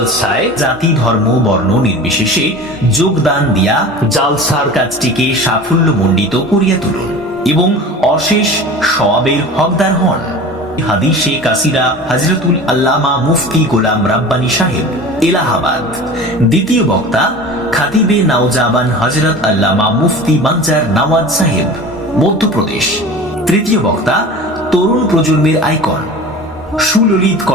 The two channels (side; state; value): both; normal; correlation 0.36